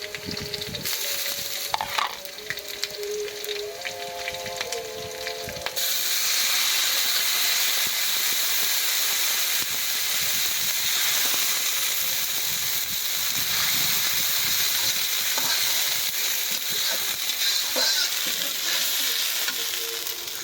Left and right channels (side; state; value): both; identical; correlation 1.00